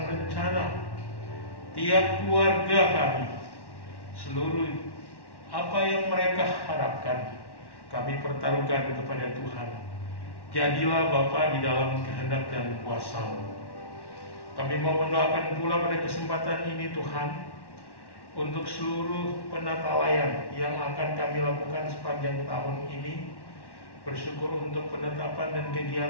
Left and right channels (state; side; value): late; right; 1.1 ms